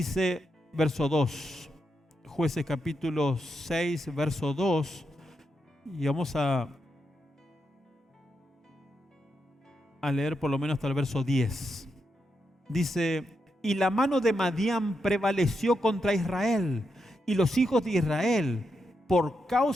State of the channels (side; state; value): both; normal; correlation 0.84